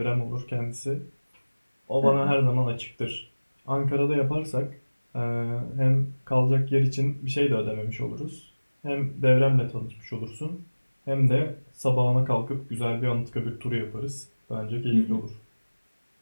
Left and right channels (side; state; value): both; inverted; correlation -1.00